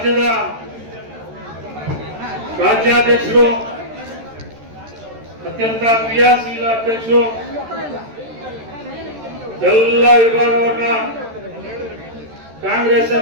ರಾಜ್ಯಾಧ್ಯಕ್ಷರು, ಅತ್ಯಂತ ಕ್ರಿಯಾಶೀಲ ಅಧ್ಯಕ್ಷರು, ಎಲ್ಲ ವಿಭಾಗವನ್ನ ಕಾಂಗ್ರೆಸ್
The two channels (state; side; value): late; left; 13 ms